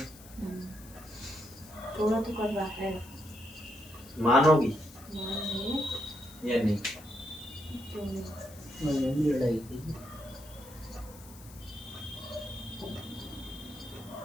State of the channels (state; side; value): noise; left; hiss, 20 dB below the sound